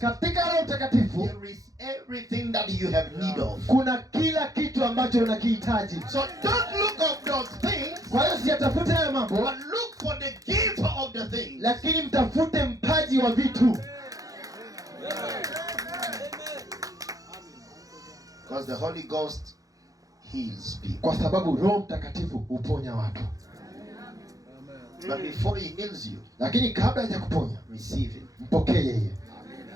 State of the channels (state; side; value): late; left; 0.17 ms